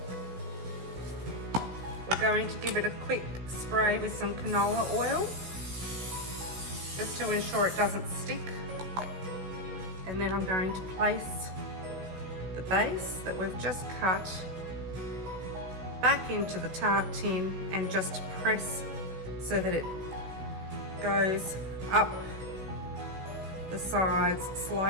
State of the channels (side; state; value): left; late; 16 ms